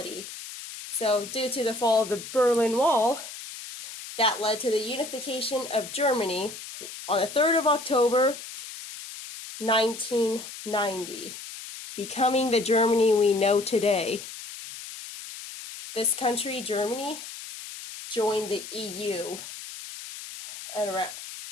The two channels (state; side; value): noise; left; hiss, 12 dB below the sound